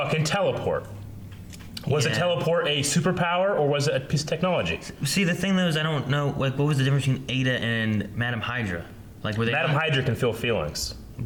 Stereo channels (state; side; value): identical; both; correlation 1.00